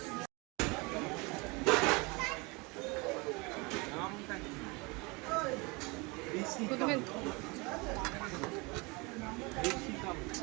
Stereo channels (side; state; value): left; quieter; 27.3 dB